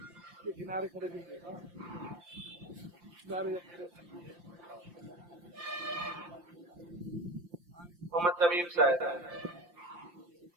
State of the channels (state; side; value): late; left; 5.7 ms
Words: محمد تمیم صاحب.